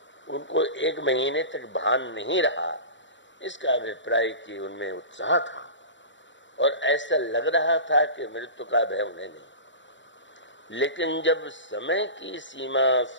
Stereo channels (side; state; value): right; late; 0.54 ms